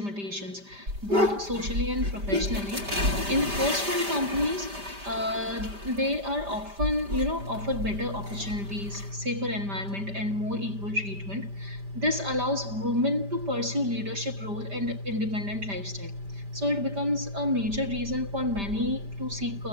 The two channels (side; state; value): left; late; 5.0 ms